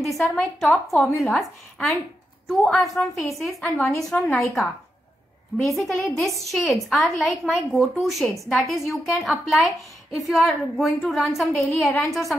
these are my top formulas, and 2 are from Faces and 1 is from Nykaa. Basically these shades are like my go-to shades, that is you can apply if you are going to run some daily errands or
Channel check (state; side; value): normal; both; correlation 0.85